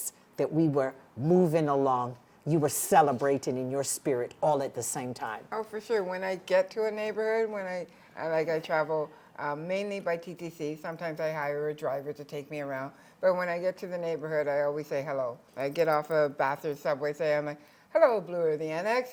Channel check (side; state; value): both; identical; correlation 1.00